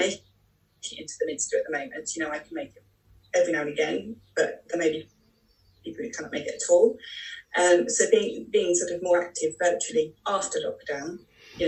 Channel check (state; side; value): identical; both; correlation 1.00